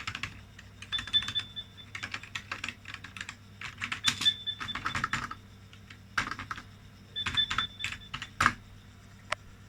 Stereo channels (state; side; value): identical; both; correlation 1.00